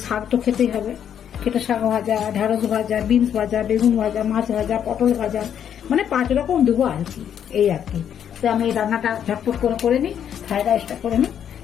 শাক তো খেতেই হবে, খেটে শাক ভাজা, ঢেঁড়স ভাজা, বিনস ভাজা, বেগুন ভাজা, মাছ ভাজা, পটল ভাজা, মানে 5 রকম দেবো আর কি, এই আর কি। তো আমি এই রান্নাটা ঝটপট করে নিই, ফ্রাইড রাইসটা করে নিই,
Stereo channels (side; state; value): right; quieter; 9.0 dB